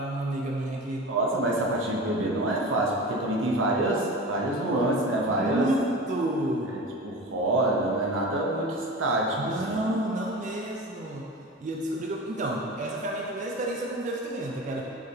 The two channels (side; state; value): both; normal; correlation 0.32